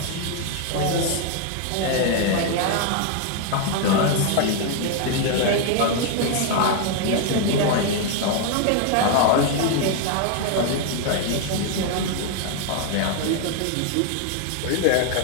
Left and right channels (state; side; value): different; both; correlation 0.00